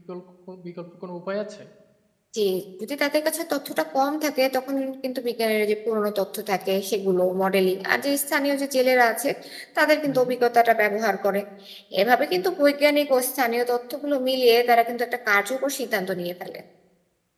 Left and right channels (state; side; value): identical; both; correlation 1.00